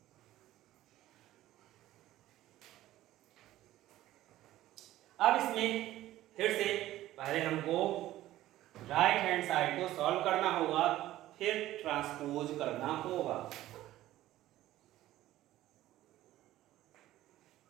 अब इसमें फिर से पहले हमको राइट हैंड साइड को सॉल्व करना होगा, फिर ट्रांसपोज करना होगा।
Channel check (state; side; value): quieter; left; 14.8 dB